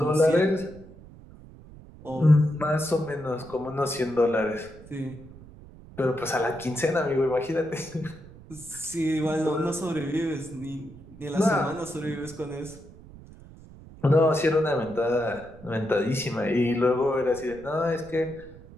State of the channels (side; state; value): right; noise; rumble, 19 dB below the sound